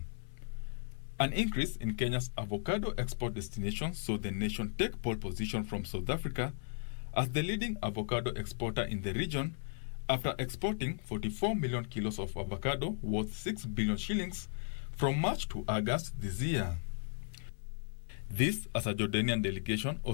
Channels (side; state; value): right; silent; 54 dB below the other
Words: An increase in Kenya's avocado export destinations saw the nation take pole position from South Africa as the leading avocado exporter in the region after exporting 44 million kilos of avocado worth 6 billion shillings from March to August this year. This, as a Jordanian delegation